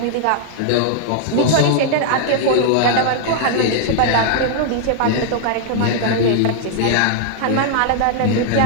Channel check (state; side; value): different; both; correlation -0.01